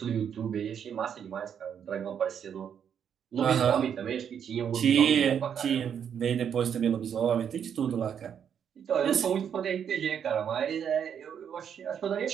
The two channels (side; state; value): left; quieter; 8.2 dB